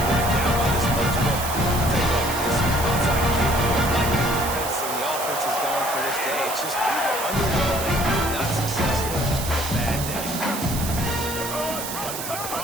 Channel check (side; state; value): right; noise; hiss, 6 dB below the sound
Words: bring it down by this much. But I'll tell you what, this onside kick, like the defense and the offense is going for this day. It's just underwhelming, not successful, just a bad day.